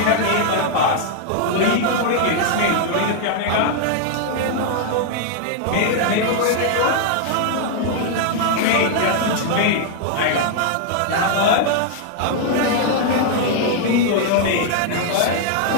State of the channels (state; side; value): different; both; correlation 0.00